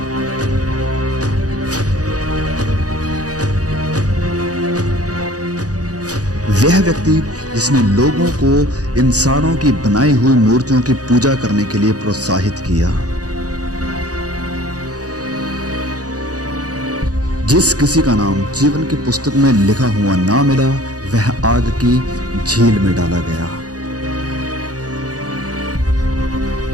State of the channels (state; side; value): late; left; 0.67 ms